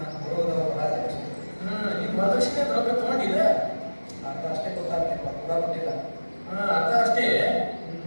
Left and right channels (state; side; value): inverted; both; correlation -1.00